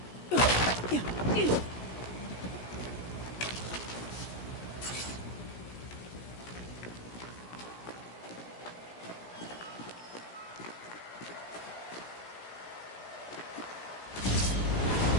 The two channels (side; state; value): right; late; 17 ms